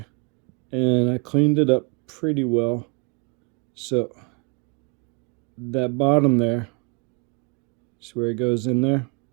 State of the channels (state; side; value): quieter; left; 33.1 dB